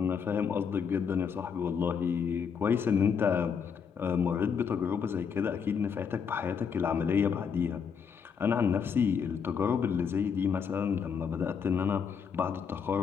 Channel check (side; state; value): right; quieter; 6.7 dB